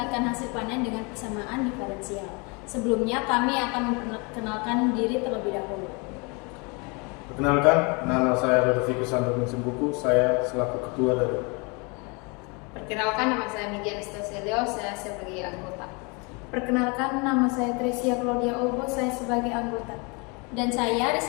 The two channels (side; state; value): right; quieter; 30.9 dB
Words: hasil panen dengan persamaan diferensial. Sebelumnya kami akan memperkenalkan diri terlebih dahulu. Perkenalkan, nama saya Rodovicus Santo Simbuku, saya selaku ketua dari. Perkenalkan, nama saya Migi Anastasia, saya sebagai anggota. Perkenalkan, nama saya Tresia Claudia Obo, saya sebagai anggota. Dan saya